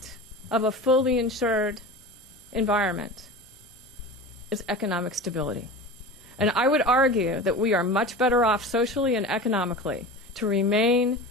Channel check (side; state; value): both; normal; correlation 0.32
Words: of a fully insured environment is economic stability. And I would argue that we are much better off socially and economically to remain